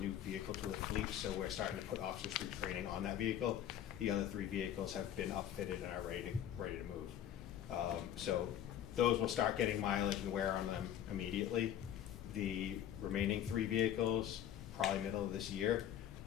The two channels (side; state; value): right; quieter; 10.6 dB